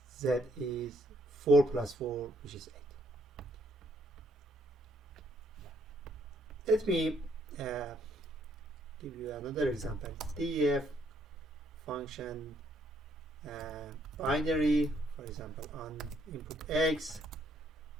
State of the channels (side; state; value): both; normal; correlation 0.70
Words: is 4 plus 4, which is 8. Let me give you another example. def function binary, for example, on input x,